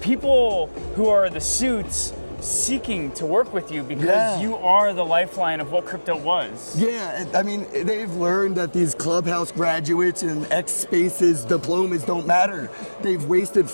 who are the suits seeking to work with you because you are the lifeline of what crypto was? Yeah, I mean, they've learned that these Clubhouse graduates and X Spaces diplomas don't matter. They've wasted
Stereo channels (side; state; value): both; inverted; correlation -1.00